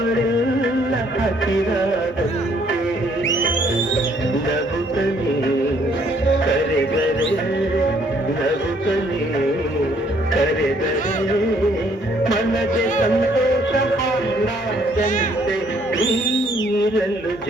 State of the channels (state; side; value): normal; both; correlation 0.65